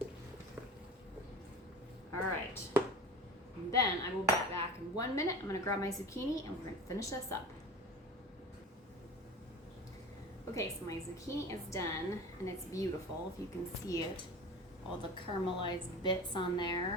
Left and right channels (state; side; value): normal; both; correlation 0.35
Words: All right. And then I will be back in 1 minute. I'm going to grab my zucchini and we're going to finish this up. Okay, so my zucchini is done and it's beautiful if you can see it. All the caramelized bits on there